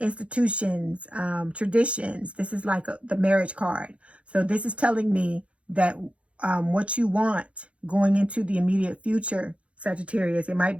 traditions. This is like the marriage card. So this is telling me that what you want going into the immediate future, Sagittarius, it might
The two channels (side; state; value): left; late; 0.061 ms